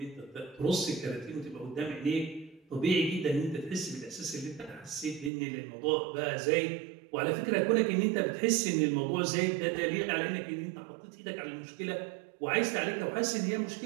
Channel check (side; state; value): left; drops out; at 5.3 s